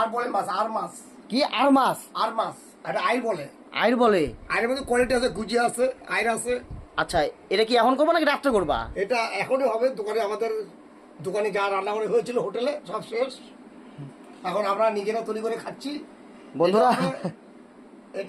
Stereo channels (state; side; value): identical; both; correlation 1.00